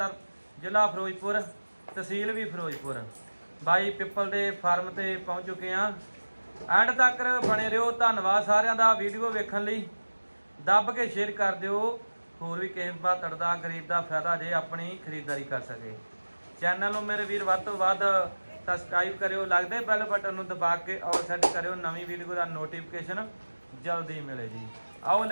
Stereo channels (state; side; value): inverted; both; correlation -1.00